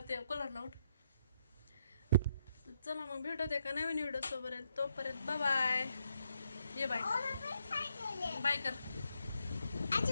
ते कूलरला उठ. चला मग भेटत एका नवीन व्हिडिओ सोबत. तोपर्यंत बाय. ये बाय बाय कर.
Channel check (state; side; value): inverted; both; correlation -0.78